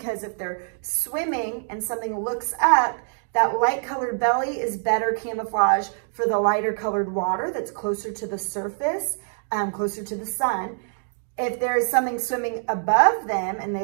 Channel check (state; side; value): silent; left; digital silence